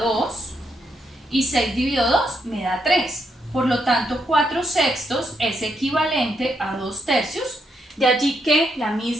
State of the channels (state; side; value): normal; both; correlation 0.78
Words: y 6 dividido 2 me da 3. Por lo tanto, 4 sextos es equivalente a 2 tercios. De allí que la